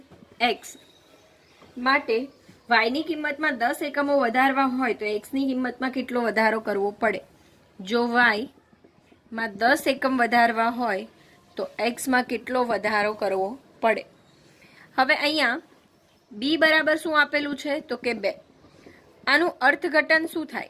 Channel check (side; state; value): both; identical; correlation 1.00